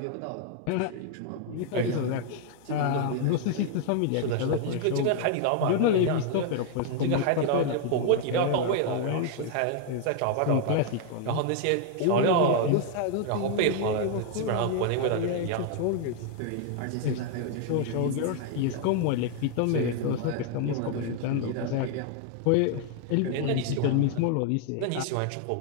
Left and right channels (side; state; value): both; different; correlation 0.00